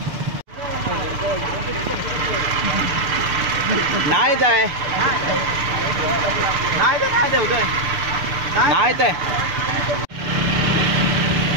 नाही जाय नाही तर काय देऊ नाही तर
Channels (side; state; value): left; late; 6.8 ms